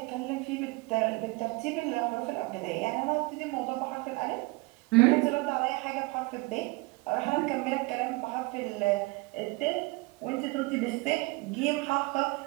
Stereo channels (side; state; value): left; quieter; 24.6 dB